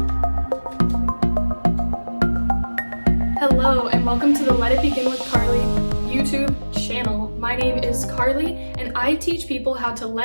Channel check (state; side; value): inverted; both; correlation -1.00